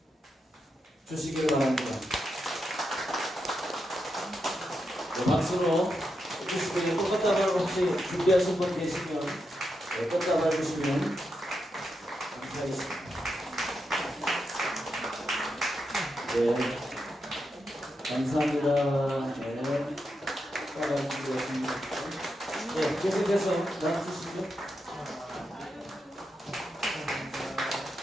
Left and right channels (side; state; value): both; normal; correlation 0.85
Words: 주시기를 바랍니다. 네, 박수로 주시기를 꽃다발 혹시 준비하신 분 계시면 꽃다발 주시면 감사하겠습니다. 네, 감사합니다. 네, 꽃다발 준비하십니다. 네, 계속해서 나눠주시죠.